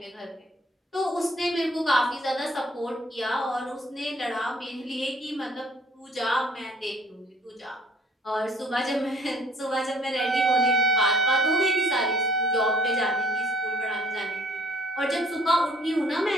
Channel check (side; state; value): both; normal; correlation 0.57